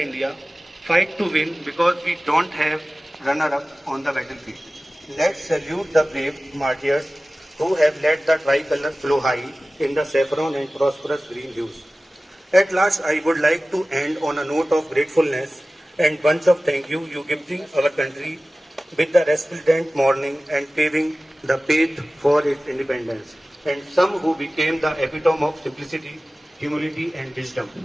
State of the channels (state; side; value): normal; both; correlation 0.97